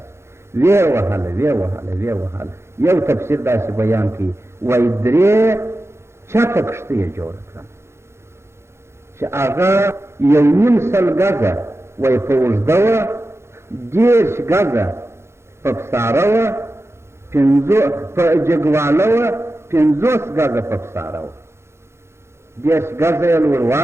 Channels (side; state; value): left; late; 0.13 ms